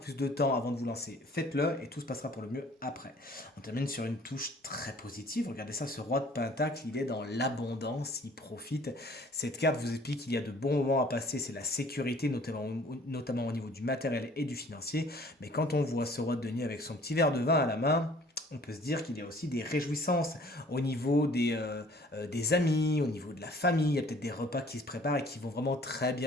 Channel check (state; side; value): normal; both; correlation 0.54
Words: de temps avant de vous lancer, faites-le et tout se passera pour le mieux après. On termine sur une touche très positive. Regardez ça, ce roi de pentacle, il est dans l'abondance, il profite. Cette carte vous explique qu'il y a de bons moments à passer, c'est la sécurité, notamment au niveau du matériel et du financier. Mais quand on voit ce roi de denier avec son petit verre de vin à la main, on peut se dire qu'il y a aussi des réjouissances au niveau des amis, au niveau de la famille. Il y a peut-être des repas qui se préparent et qui vont vraiment très